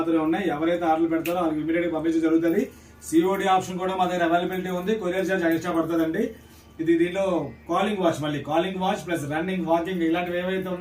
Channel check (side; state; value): both; identical; correlation 1.00